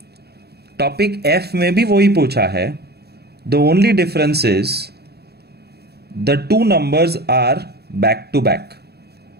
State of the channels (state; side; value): late; left; 0.47 ms